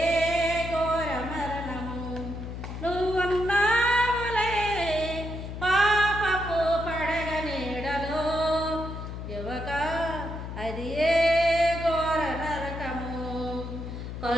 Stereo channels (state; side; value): noise; left; hum, 8 dB below the sound